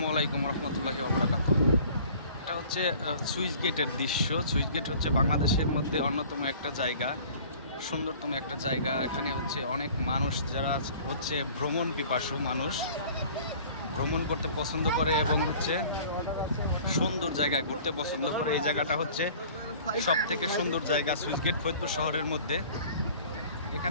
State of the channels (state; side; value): inverted; both; correlation -0.48